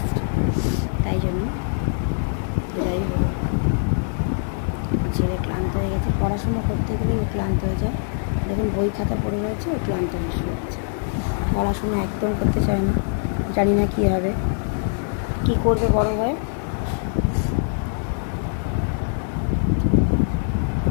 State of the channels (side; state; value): right; silent; digital silence